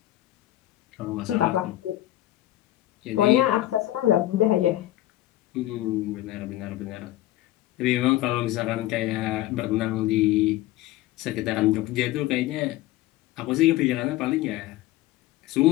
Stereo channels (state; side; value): quieter; right; 15.3 dB